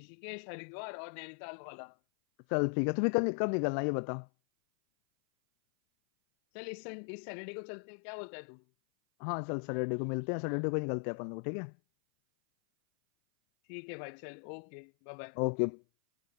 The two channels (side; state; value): right; silent; 53 dB below the other